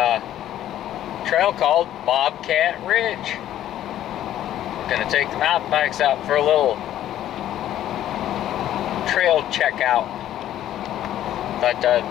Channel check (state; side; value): quieter; right; 12.1 dB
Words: trail called Bobcat Ridge. Gonna take the mountain bikes out for a little trail checkout. Thought